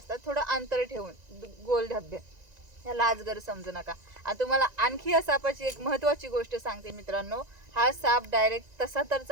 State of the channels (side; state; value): left; late; 1.9 ms